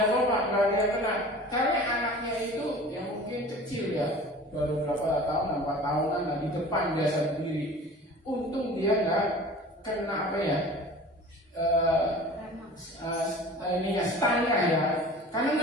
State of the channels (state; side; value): normal; both; correlation 0.41